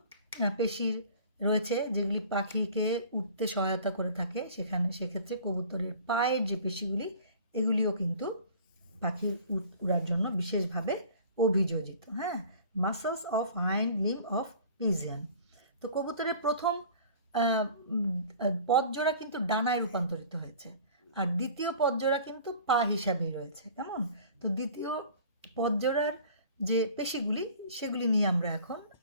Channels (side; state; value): both; inverted; correlation -0.46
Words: পেশির রয়েছে যেগুলি পাখিকে উঠতে সহায়তা করে থাকে, সেক্ষেত্রে কবুতরের পায়ের যে পেশিগুলি, এগুলিও কিন্তু পাখির উড়ার জন্য বিশেষভাবে অভিযোজিত। হ্যাঁ, muscles of hind limb of pigeon. তো কবুতরের প্রথম পদজোড়া কিন্তু ডানায় রূপান্তরিত হয়েছে, আর দ্বিতীয় পদজোড়া কিন্তু পা হিসাবেই রয়েছে, কেমন? তো দ্বিতীয় পদজোড়ার যে পেশিগুলি, সেগুলি নিয়ে আমরা এখন